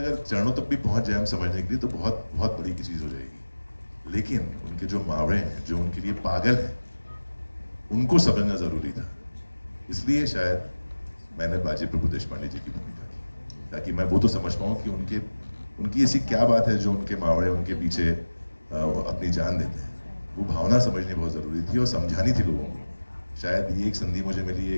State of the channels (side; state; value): both; inverted; correlation -1.00